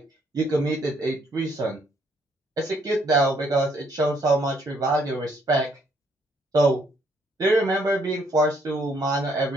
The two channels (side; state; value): both; normal; correlation 0.69